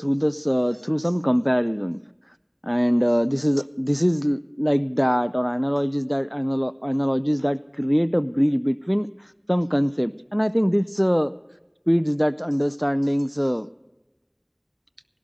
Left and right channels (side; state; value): both; identical; correlation 1.00